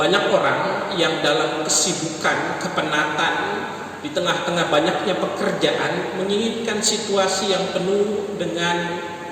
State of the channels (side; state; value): both; identical; correlation 1.00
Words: orang yang dalam kesibukan, kepenatan, di tengah-tengah banyaknya pekerjaan, menginginkan situasi yang penuh dengan